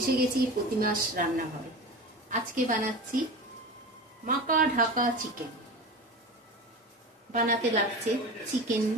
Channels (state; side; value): normal; both; correlation 0.30